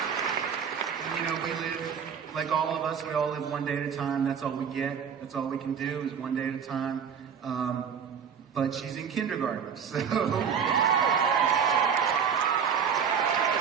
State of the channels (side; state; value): left; quieter; 7.3 dB